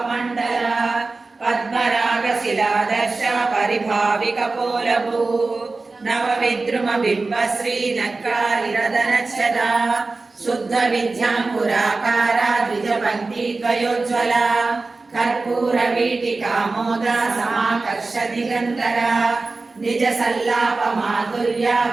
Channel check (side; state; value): left; quieter; 3.6 dB